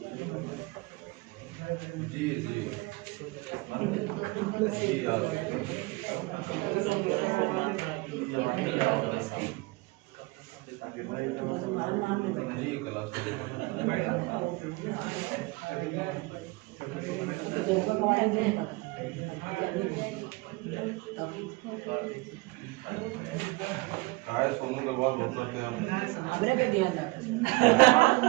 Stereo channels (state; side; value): quieter; left; 23.6 dB